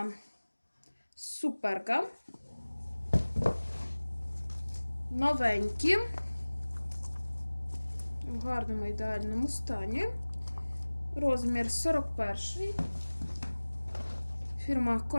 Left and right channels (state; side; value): inverted; both; correlation -1.00